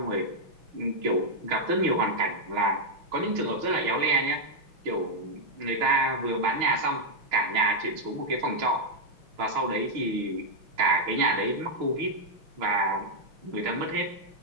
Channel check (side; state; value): left; late; 6.3 ms